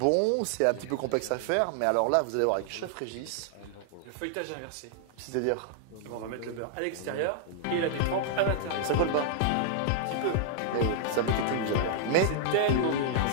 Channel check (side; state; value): both; different; correlation -0.01